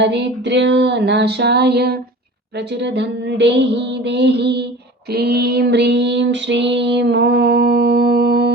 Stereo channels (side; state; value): both; normal; correlation 0.39